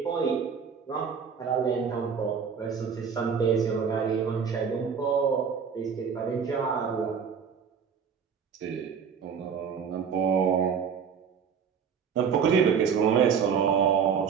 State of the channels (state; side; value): quieter; left; 6.7 dB